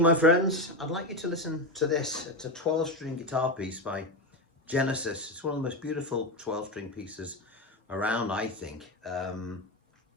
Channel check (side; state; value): both; normal; correlation 0.15